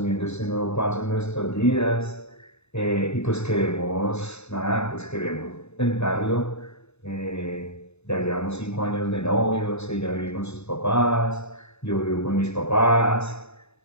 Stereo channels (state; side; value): late; right; 0.80 ms